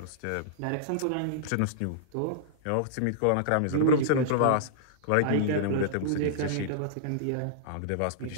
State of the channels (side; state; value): both; different; correlation -0.02